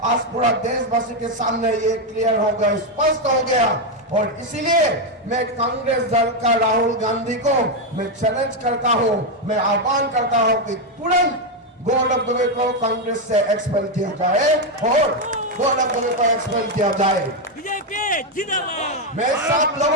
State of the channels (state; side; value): normal; both; correlation 0.05